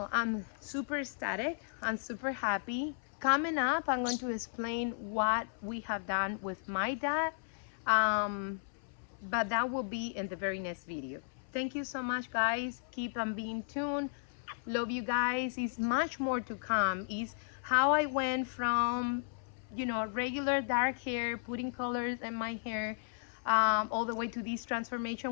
I'm super ecstatic. I'm super happy. Coming up, I'm going to explain what we have done with my dad. But that will be in the very next video. Thank you so much, guys. Keep on being tuned. Love you guys. It's much more to come. Is how I went from, you know, regular dark hair, putting colors in my hair, all the way to this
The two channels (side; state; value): right; silent; 55 dB below the other